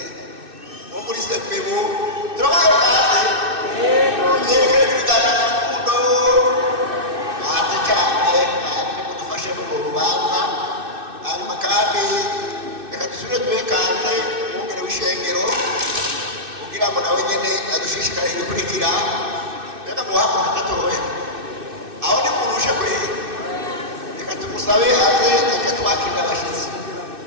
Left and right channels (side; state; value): left; late; 2.6 ms